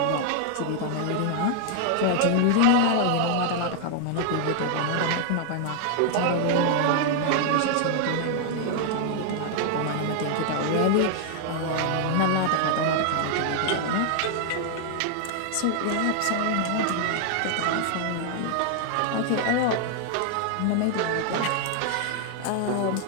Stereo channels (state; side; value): different; both; correlation 0.00